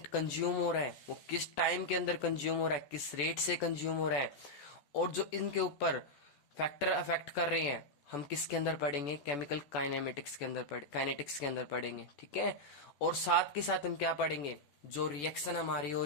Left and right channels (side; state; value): right; late; 14 ms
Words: कंज्यूम हो रहा है वो किस टाइम के अंदर कंज्यूम हो रहा है, किस रेट से कंज्यूम हो रहा है, और जो इनके ऊपर फैक्टर अफेक्ट कर रहे हैं हम किसके अंदर पढ़ेंगे? केमिकल काइनेमेटिक्स के अंदर काइनेटिक्स के अंदर पढ़ेंगे। ठीक है। और साथ के साथ हम क्या पढ़ेंगे? जो रिएक्शन हमारी हो